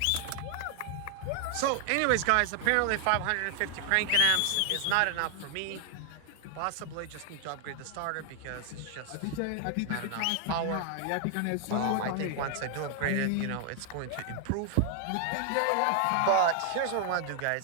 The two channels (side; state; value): both; different; correlation 0.00